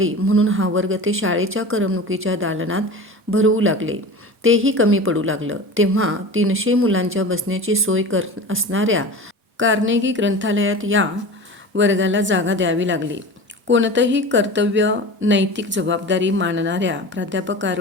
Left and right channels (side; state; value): both; normal; correlation 0.33